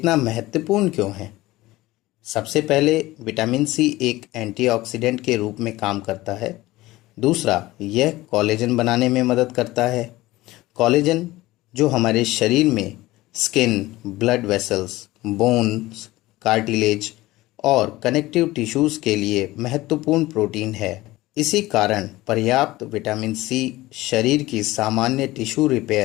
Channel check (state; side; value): quieter; right; 18.3 dB